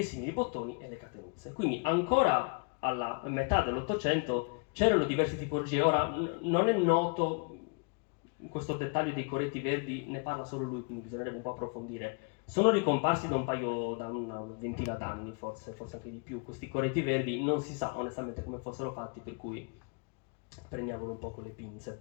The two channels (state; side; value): quieter; right; 35.4 dB